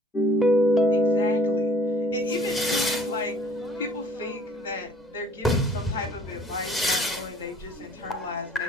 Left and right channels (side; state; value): both; normal; correlation 0.55